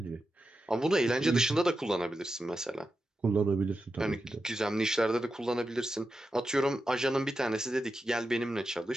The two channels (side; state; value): both; normal; correlation 0.89